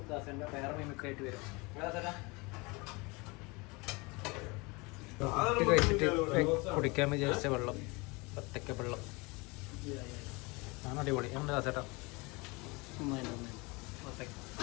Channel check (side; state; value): right; quieter; 26.5 dB